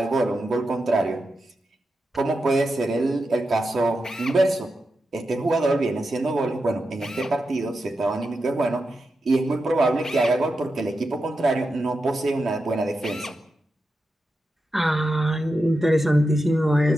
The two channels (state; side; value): normal; both; correlation 0.89